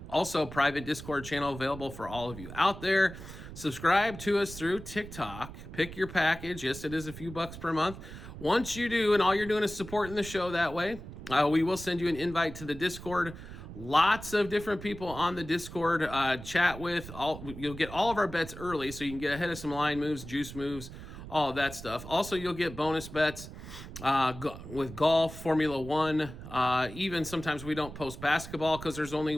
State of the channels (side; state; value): right; noise; rumble, 12 dB below the sound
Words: Also, private Discord channel available for all of you out there. Subscribe to us through TikTok. Pick your package. Yes, it is a few bucks per month. Once you do, and all you're doing is supporting the show that way, we will send you an invite to the Discord. Lots of different people on the Discord chat with. You'll get all of our bets early, so you can get ahead of some line moves, juice moves, all of that stuff. Also, you'll get bonus bets with golf, Formula One. Even sometimes we don't post basketball because there's only